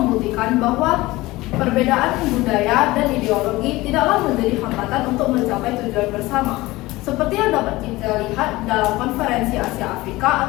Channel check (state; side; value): quieter; right; 19.6 dB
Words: bahwa perbedaan budaya dan ideologi tidaklah menjadi hambatan untuk mencapai tujuan bersama. Seperti yang dapat kita lihat dalam Konferensi Asia Afrika